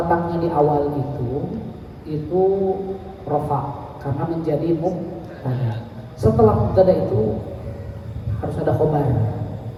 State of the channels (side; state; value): both; identical; correlation 1.00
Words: di awal itu rofa karena menjadi mubtada. Setelah mubtada itu harus ada khobar